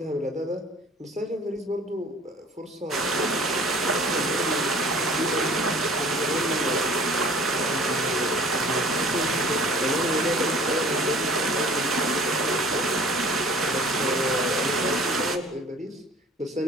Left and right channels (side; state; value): both; normal; correlation 0.48